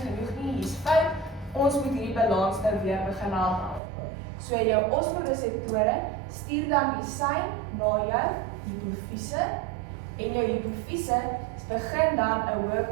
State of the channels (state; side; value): drops out; left; at 3.8 s